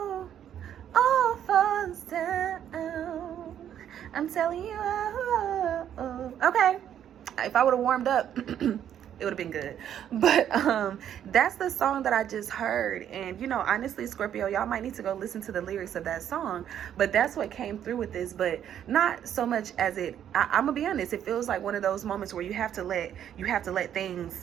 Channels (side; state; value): left; quieter; 9.9 dB